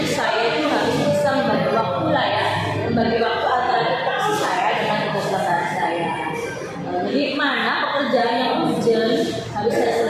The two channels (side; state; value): both; identical; correlation 1.00